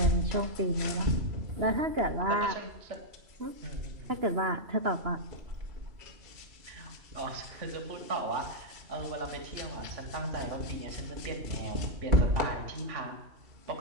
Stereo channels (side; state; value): left; late; 2.9 ms